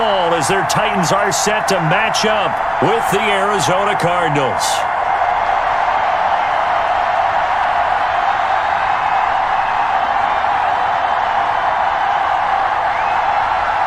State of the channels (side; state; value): both; identical; correlation 1.00